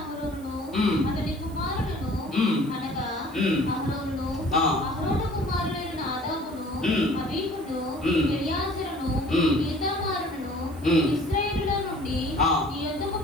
అతని కుమారులను అనగా అహరోను కుమారులైన నాదాబును అబీహును ఎలియాజరును ఈతామారును ఇశ్రాయేలులో నుండి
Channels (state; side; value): noise; right; hiss, 24 dB below the sound